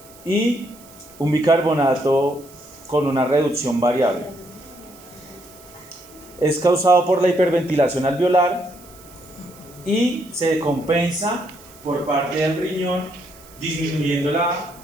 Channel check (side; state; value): right; noise; hiss, 23 dB below the sound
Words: y un bicarbonato con una reducción variable. Es causado por la hiperventilación alveolar y se compensa por parte del riñón disminuyendo la